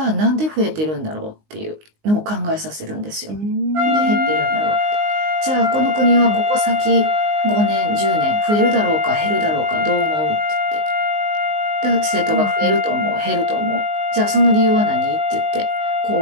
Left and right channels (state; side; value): late; left; 19 ms